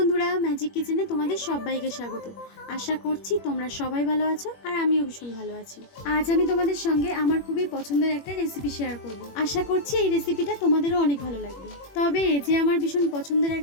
magic কিচেনে তোমাদের সবাইকে স্বাগত। আশা করছি তোমরা সবাই ভালো আছো আর আমিও ভীষণ ভালো আছি। আজ আমি তোমাদের সঙ্গে আমার খুবই পছন্দের একটা রেসিপি শেয়ার করব। আশা করছি এই রেসিপিটা তোমাদেরও অনেক ভালো লাগবে। তবে এই যে আমার ভীষণ পছন্দের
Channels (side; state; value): right; late; 21 ms